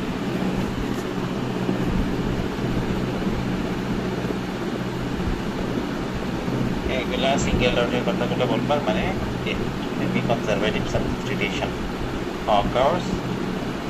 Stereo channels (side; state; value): both; identical; correlation 1.00